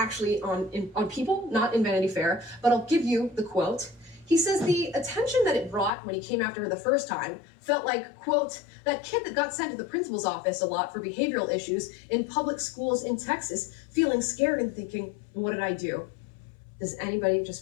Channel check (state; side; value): drops out; right; at 5.9 s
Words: on People, not in Vanity Fair, but I'll give you the quote. He says the attention that it brought when he came after her the first time felt like, quote, that kid that got sent to the principal's office a lot for behavioral issues in public schools in Texas, feeling scared and thinking, what did I do? Does anybody,